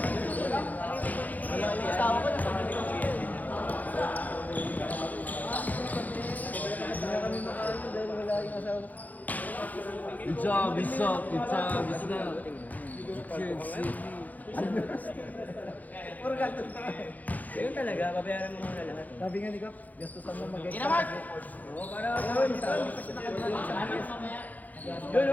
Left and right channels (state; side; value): late; right; 0.080 ms